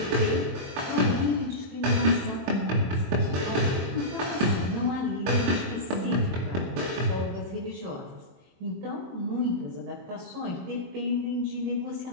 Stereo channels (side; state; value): left; late; 23 ms